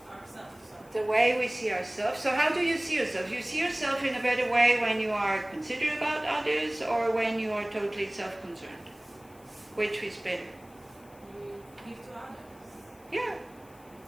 ourselves. The way we see ourselves. So how do you see yourself? You see yourself in a better way when you are considerate about others or when you are totally self-concerned? Which is better? You give to others. Yeah.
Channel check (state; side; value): noise; left; hiss, 27 dB below the sound